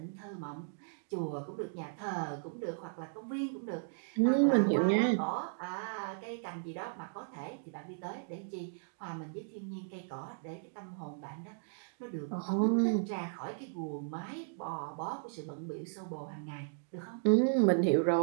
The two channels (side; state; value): left; silent; digital silence